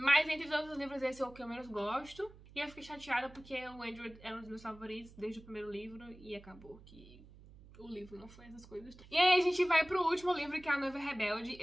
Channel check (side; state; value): right; noise; hum, 20 dB below the sound